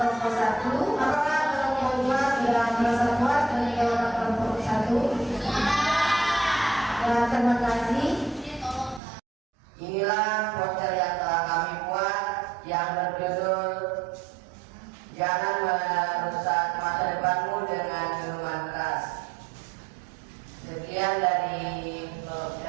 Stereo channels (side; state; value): left; drops out; at 9.0 s